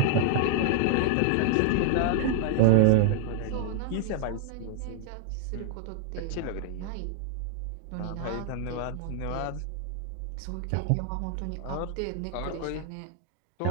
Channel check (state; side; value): different; both; correlation 0.00